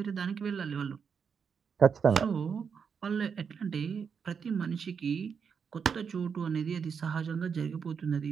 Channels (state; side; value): quieter; left; 6.5 dB